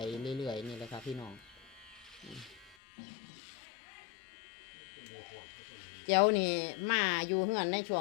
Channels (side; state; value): right; drops out; at 2.8 s